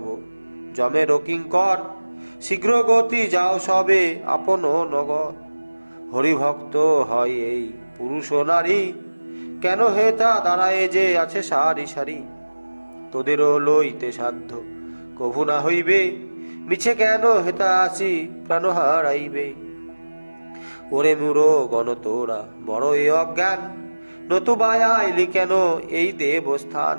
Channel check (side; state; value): both; inverted; correlation -1.00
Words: যমের কিঙ্কর, শীঘ্র গতি যাও সবে আপন নগর। হরিভক্ত হয় এই পুরুষ নারী, কেন হে তা দাঁড়ায় যে আছে সারি সারি। তোদেরও লইতে সাধ্য কভু না হইবে, মিছে কেন হেতা আসি প্রাণ হারাইবে। ওরে মূঢ় গণ তোরা বড় এ অজ্ঞান, নতুবা আইলি কেন এই দেবস্থান।